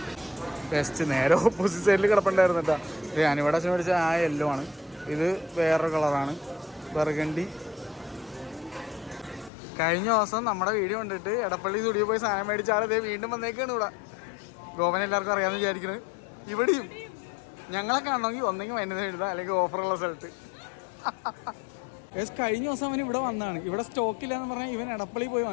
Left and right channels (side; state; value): right; drops out; at 9.5 s